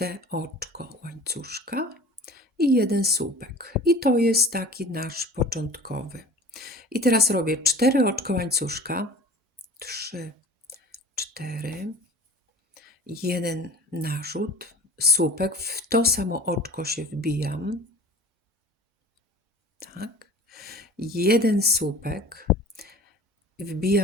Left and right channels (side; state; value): both; normal; correlation 0.41